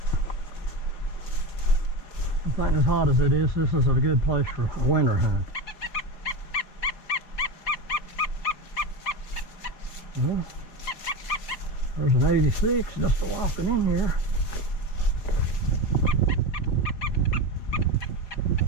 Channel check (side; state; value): right; late; 4.6 ms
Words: I think as hot as it is, this is a good place for a winter hunt. Well, there's an 86 just walking in here.